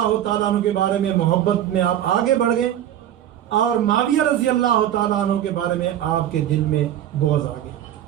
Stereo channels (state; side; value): quieter; left; 11.3 dB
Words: تعالیٰ عنہ کے بارے میں محبت میں آپ آگے بڑھ گئے، اور معاویہ رضی اللہ تعالیٰ عنہ کے بارے میں آپ کے دل میں بغض آ گیا،